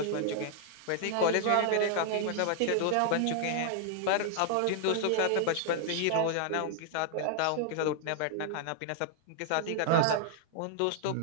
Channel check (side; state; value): both; different; correlation 0.00